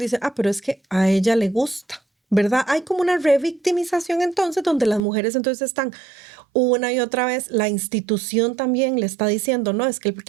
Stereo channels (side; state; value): left; drops out; at 5.0 s